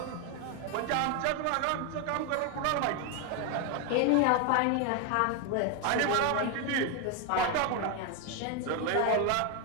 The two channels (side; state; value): both; different; correlation 0.01